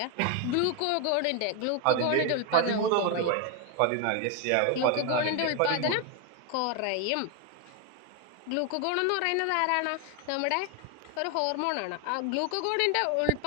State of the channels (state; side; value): different; both; correlation 0.01